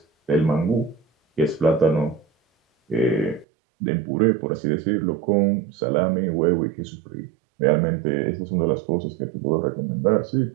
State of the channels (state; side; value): drops out; left; at 3.5 s